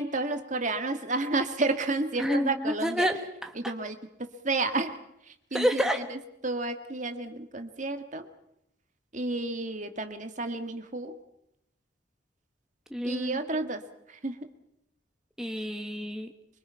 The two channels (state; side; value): normal; both; correlation 0.42